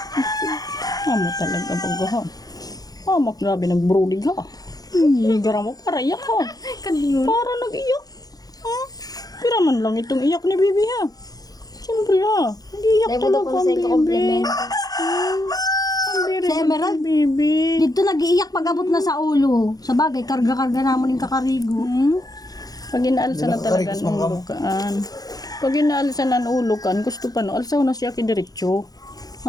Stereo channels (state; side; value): late; right; 0.18 ms